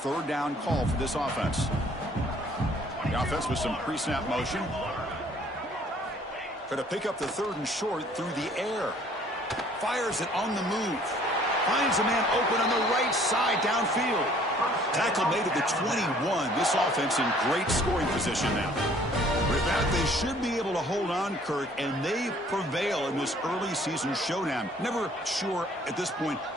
down call for this offense. The offense with some pre-snap motion. Try to pick up the 3rd and short through the air. Fires it on the move. Finds a man open on the right side downfield. Tackle made at the 21. This offense in great scoring position now. With that, they should be able to hold on, Kirk, and they prevail in this early season showdown. Never sure at this point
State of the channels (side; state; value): both; normal; correlation 0.57